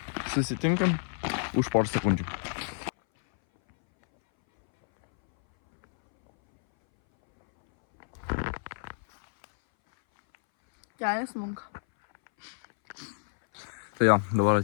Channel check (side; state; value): right; silent; 59 dB below the other